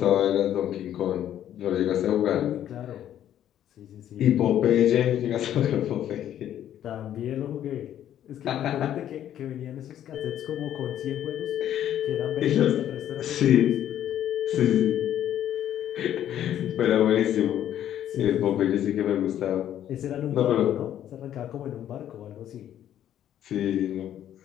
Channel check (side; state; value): right; quieter; 11.0 dB